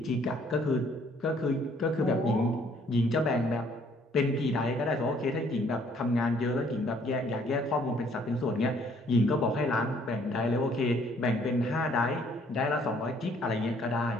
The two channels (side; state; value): both; normal; correlation 0.62